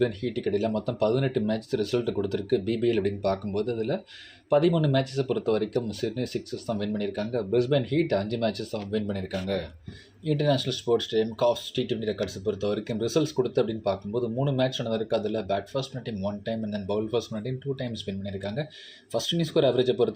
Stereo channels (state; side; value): identical; both; correlation 1.00